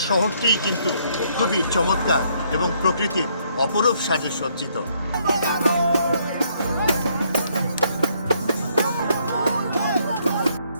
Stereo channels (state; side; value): inverted; both; correlation -0.69